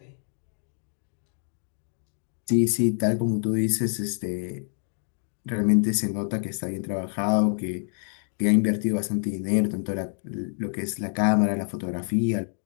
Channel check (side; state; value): right; silent; 60 dB below the other